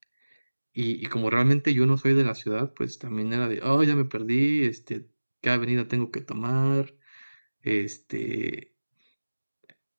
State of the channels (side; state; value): both; inverted; correlation -1.00